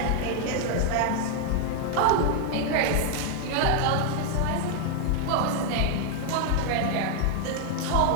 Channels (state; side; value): different; both; correlation 0.00